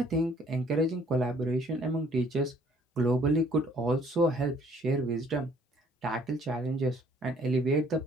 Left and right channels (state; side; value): normal; both; correlation 0.60